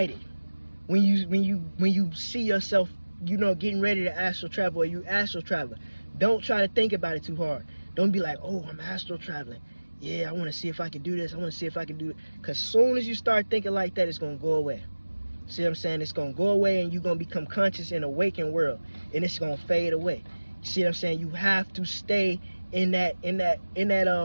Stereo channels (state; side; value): inverted; both; correlation -1.00